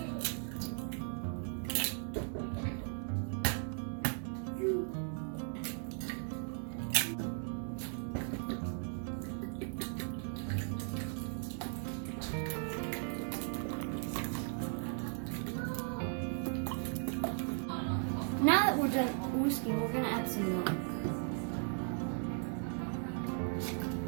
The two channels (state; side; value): silent; left; 53 dB below the other